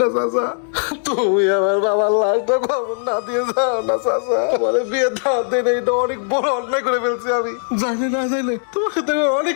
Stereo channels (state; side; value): silent; right; digital silence